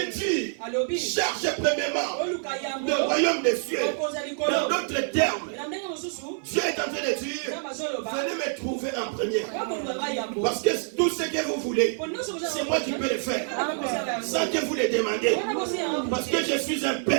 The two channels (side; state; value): left; silent; 60 dB below the other